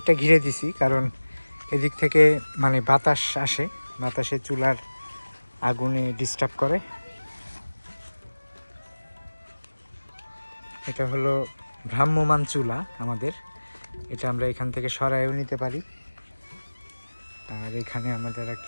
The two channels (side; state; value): both; inverted; correlation -1.00